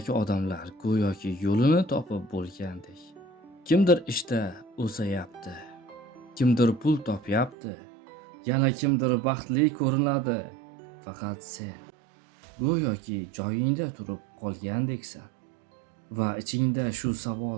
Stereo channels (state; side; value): drops out; left; at 7.6 s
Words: odamlar go'yoki yo'lini topib bo'lgandek. Kimdir ishda o'sayapti, kimdir pul topyapti, yana kimdir baxtli ko'rinadi. Faqat sen go'yoki joyingda turib qolgandeksan. Va ichingda shu